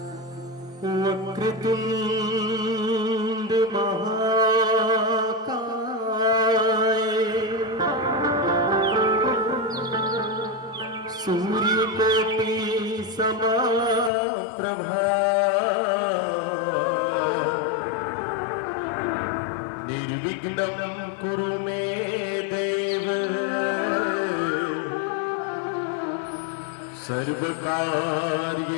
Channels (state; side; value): drops out; right; at 14.1 s